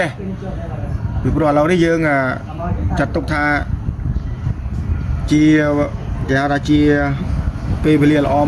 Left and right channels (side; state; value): both; identical; correlation 1.00